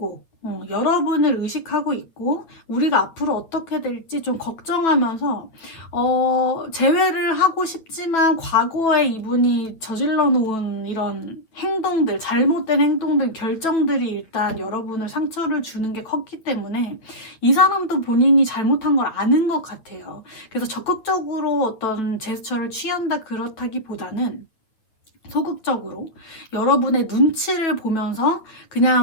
여러분을 의식하고 있고 우리가 앞으로 어떻게 될지 좀 걱정하면서 재회를 하고 싶지만 과거에 이분이 저질러 놓은 이런 행동들, 잘못된 행동들, 결정들이 일단 여러분을 상처를 주는 게 컸기 때문에 이 사람도 본인이 잘못한 걸 아는 것 같아요. 그래서 적극적으로 어떤 제스처를 취한다 그렇다기보다는 소극적으로 여러분의 눈치를 보면서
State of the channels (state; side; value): late; right; 8.8 ms